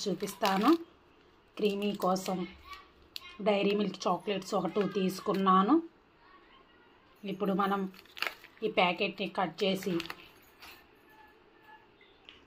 చూపిస్తాను. క్రీమీ కోసం డైరీ మిల్క్ చాక్లెట్స్ ఒక 2 తీసుకున్నాను. ఇప్పుడు మనం ఈ ప్యాకెట్ని కట్ చేసి,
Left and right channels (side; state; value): both; identical; correlation 1.00